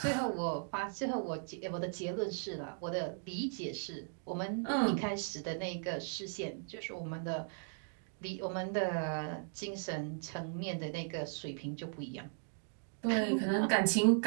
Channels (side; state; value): left; silent; digital silence